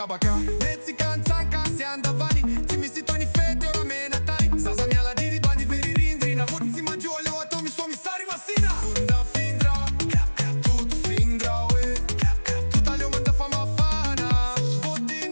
kabaka Metsikantsaka si andavani Ti mi si toni fete ora mena tani Zaza mia la diri bandi veri rindri Na vot si maggiole o atomi somi sari masina Funda findra Tut findra ue Tuta leo manda fama fana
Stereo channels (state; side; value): inverted; both; correlation -1.00